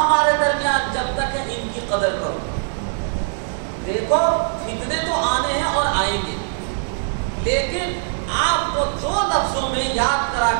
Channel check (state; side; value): silent; left; digital silence